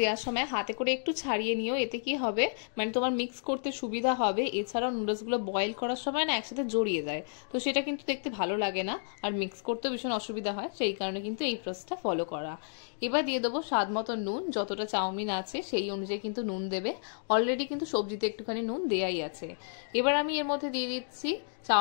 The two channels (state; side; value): silent; right; digital silence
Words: দেওয়ার সময় হাতে করে একটু ছাড়িয়ে নিও, এতে কি হবে মানে তোমার মিক্স করতে সুবিধা হবে। এছাড়াও নুডলসগুলো বয়েল করার সময় না একসাথে জড়িয়ে যায়, তো সেটা কিন্তু দেখতে ভালো লাগে না, আর মিক্স করতেও ভীষণ অসুবিধা হয়, সেই কারণে কিন্তু এই প্রসেসটা ফলো করা। এবার দিয়ে দেবো স্বাদ মতো নুন, যতটা চাউমিন আছে সেই অনুযায়ী কিন্তু নুন দেবে। অলরেডি কিন্তু সবজিতে একটুখানি নুন দেয়াই আছে। এবার আমি এর মধ্যে দিয়ে দিচ্ছি